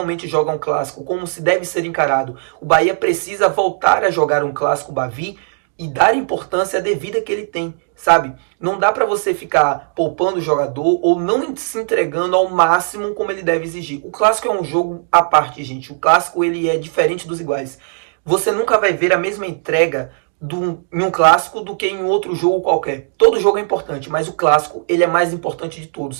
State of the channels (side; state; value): left; silent; digital silence